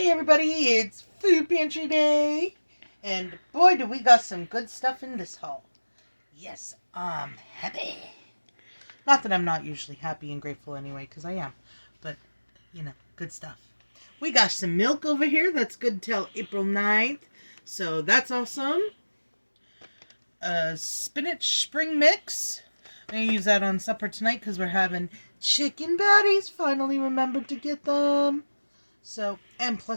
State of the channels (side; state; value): both; inverted; correlation -1.00